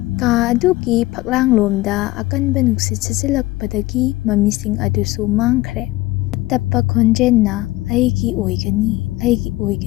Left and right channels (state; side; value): quieter; right; 18.7 dB